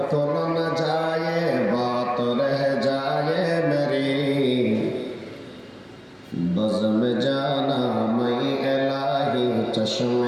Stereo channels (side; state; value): both; identical; correlation 1.00